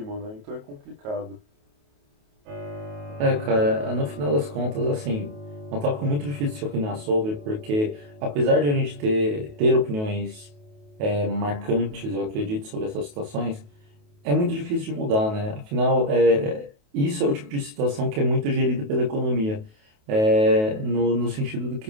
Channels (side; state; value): left; late; 28 ms